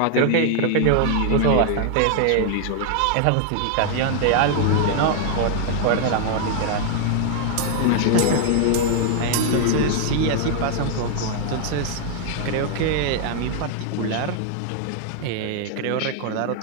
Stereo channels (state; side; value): different; both; correlation 0.00